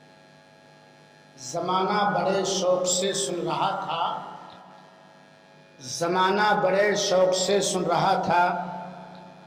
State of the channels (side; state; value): both; identical; correlation 1.00